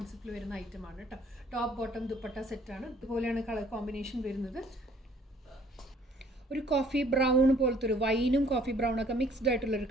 വരുന്ന ഐറ്റമാണ് കേട്ടോ. ടോപ്പ് ബോട്ടം ദുപ്പട്ട സെറ്റാണ്. ഇതുപോലെയാണ് കളർ കോമ്പിനേഷൻ വരുന്നത്. ഒരു കോഫി ബ്രൗൺ പോലത്തെ ഒരു വൈനും കോഫി ബ്രൗണൊക്കെ മിക്സ്ഡ് ആയിട്ടുള്ളൊരു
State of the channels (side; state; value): both; normal; correlation 0.59